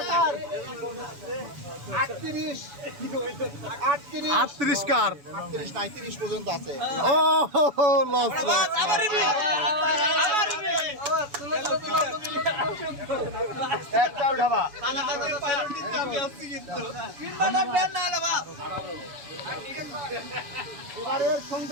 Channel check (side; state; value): left; late; 7.0 ms